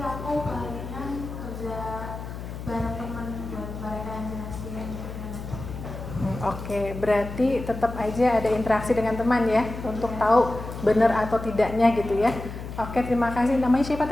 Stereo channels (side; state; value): left; noise; hum, 9 dB below the sound